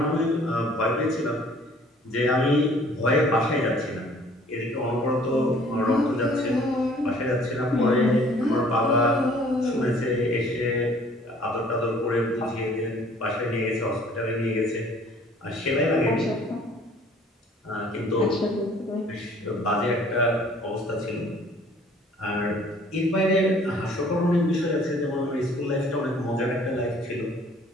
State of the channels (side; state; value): both; normal; correlation 0.55